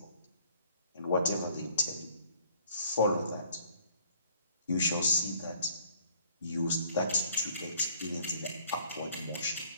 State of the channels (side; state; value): both; inverted; correlation -0.58